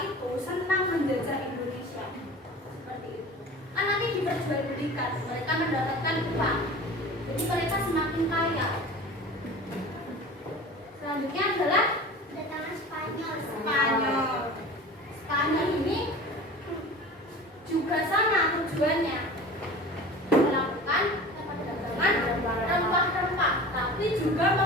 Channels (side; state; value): both; normal; correlation 0.38